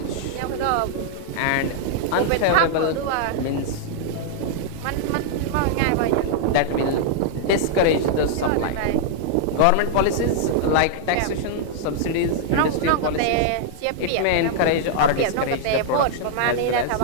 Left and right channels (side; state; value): both; different; correlation -0.01